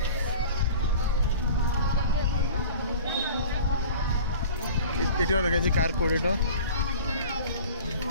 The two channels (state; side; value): inverted; both; correlation -0.42